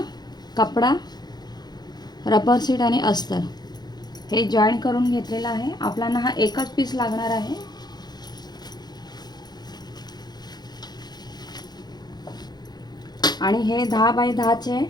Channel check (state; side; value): late; right; 0.20 ms